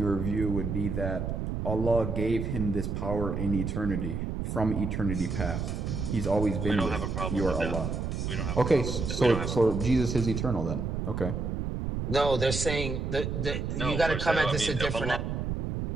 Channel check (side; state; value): right; noise; rumble, 2 dB below the sound